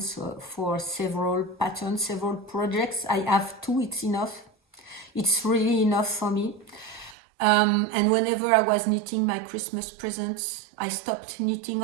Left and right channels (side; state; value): left; drops out; at 7.2 s